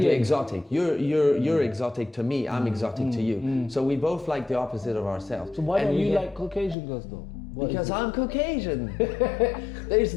exotic. You're exotic to me, I'm exotic to you. So we both like the opposite of ourselves. So why don't you like Caucasian girls though? Because I'm Caucasian. There's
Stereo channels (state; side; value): drops out; right; at 6.8 s